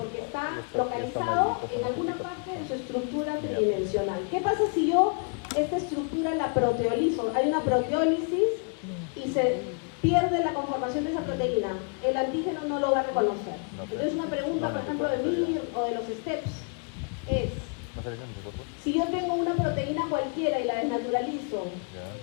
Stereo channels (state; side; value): quieter; right; 39.6 dB